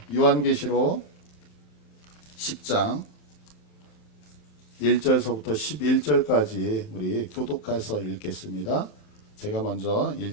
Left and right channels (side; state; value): right; late; 39 ms